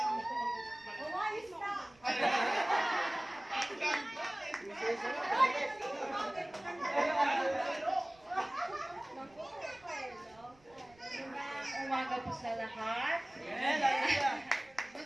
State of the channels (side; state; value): right; noise; rumble, 29 dB below the sound